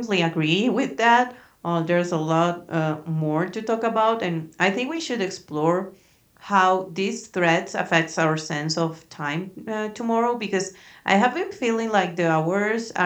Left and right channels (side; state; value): both; identical; correlation 1.00